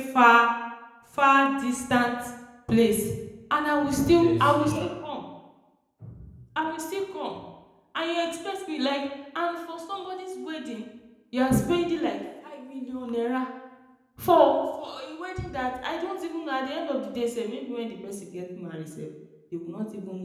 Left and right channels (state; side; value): identical; both; correlation 1.00